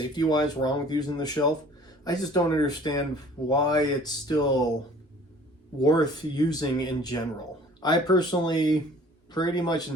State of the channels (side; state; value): both; normal; correlation 0.51